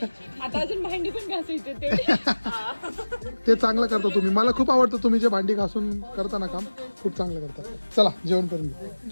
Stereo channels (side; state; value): both; inverted; correlation -1.00